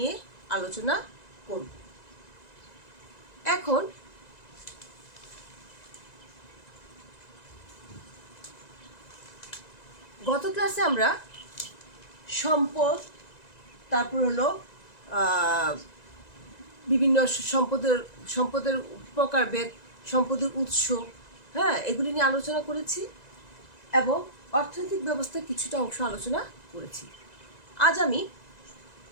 আলোচনা করব। এখন গত ক্লাসে আমরা সম্পদ, তারপর হলো বিভিন্ন সম্পদের প্রকারভেদ, সম্পদের উৎস, এগুলি নিয়ে আলোচনা করেছি এবং অর্থনৈতিক ব্যবস্থার কিছুটা অংশ আলোচনা করেছি। আজ আমি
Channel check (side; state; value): right; late; 1.9 ms